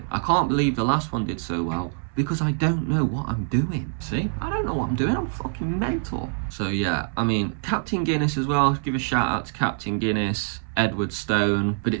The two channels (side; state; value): left; silent; 62 dB below the other